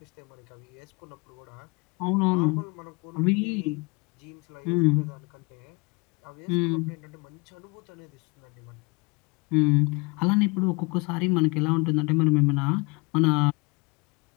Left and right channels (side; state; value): right; quieter; 28.0 dB